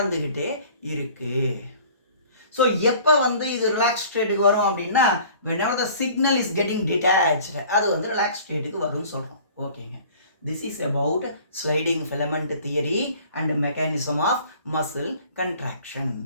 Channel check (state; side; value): inverted; both; correlation -0.49